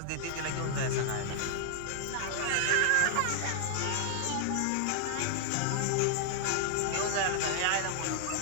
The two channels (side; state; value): both; different; correlation 0.00